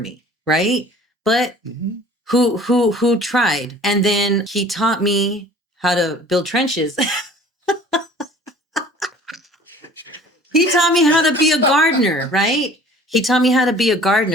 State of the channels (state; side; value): normal; both; correlation 0.49